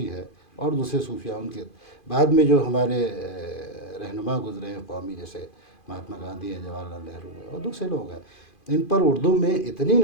ہے، اور دوسرے صوفیہ ان کے بعد میں جو ہمارے رہنما گزرے ہیں قومی، جیسے مہاتما گاندھی ہیں، جواہر لال نہرو ہیں، اور دوسرے لوگ ہیں۔ ان پر اردو میں اتنی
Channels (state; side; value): late; right; 2.5 ms